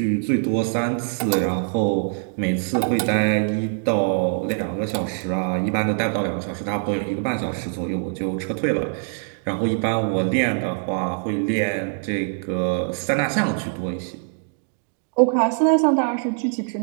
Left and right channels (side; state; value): left; silent; 63 dB below the other